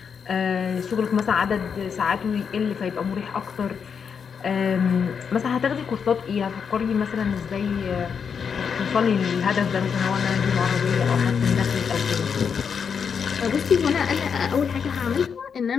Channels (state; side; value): quieter; right; 6.6 dB